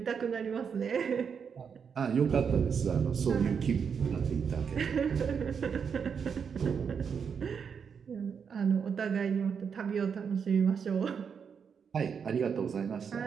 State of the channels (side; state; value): left; quieter; 6.7 dB